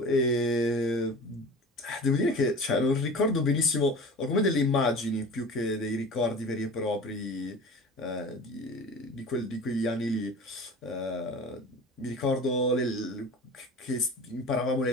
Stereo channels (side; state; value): both; normal; correlation 0.37